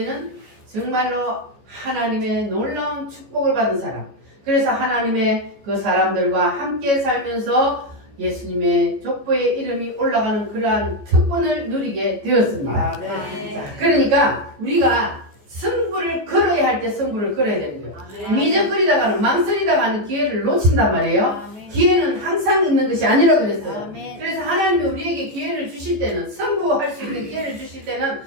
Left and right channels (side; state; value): left; late; 14 ms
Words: 정말로 하나님의 놀라운 축복을 받은 사람, 그래서 하나님의 그 사람들과 함께 살면서 예수님의 족보에 이름이 올라가는 그러한 특권을 누리게 되었습니다. 자, 그러니까 우리가 승부를 걸어야 할 때 승부를 걸어야 되는 거예요. 미적거리다가는 망설이다가는 기회를 놓친단 말이에요. 기회는 항상 있는 것이 아니라 그랬어요. 아멘. 그래서 하나님이 우리에게 기회를 주실 때는, 승부할 수 있는 기회를 주실 때는